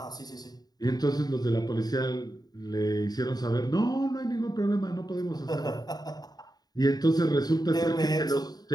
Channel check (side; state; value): right; late; 0.19 ms